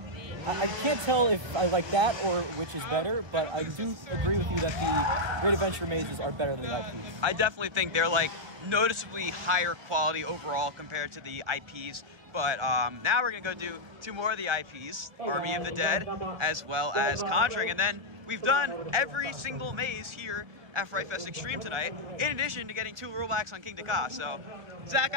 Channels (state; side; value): late; left; 1.1 ms